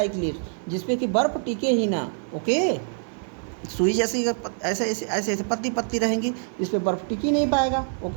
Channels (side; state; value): left; silent; 62 dB below the other